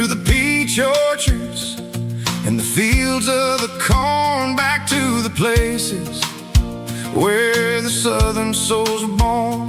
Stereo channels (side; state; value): both; identical; correlation 1.00